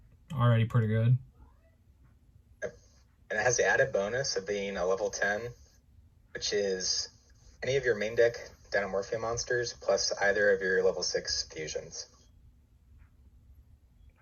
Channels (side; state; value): both; identical; correlation 1.00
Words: Already pretty good. And it has the added bonus of being a level 10, which is any of your main deck Dinomorphia monsters plus either of your level 6 fusions.